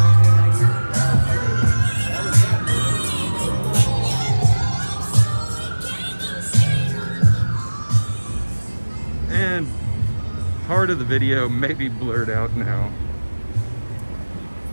And part of the video may be blurred out now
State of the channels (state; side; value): inverted; both; correlation -1.00